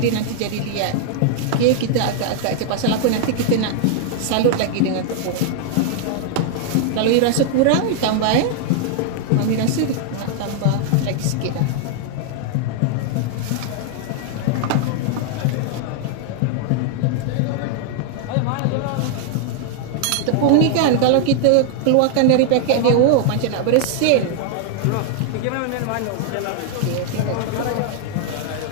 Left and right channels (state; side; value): different; both; correlation 0.00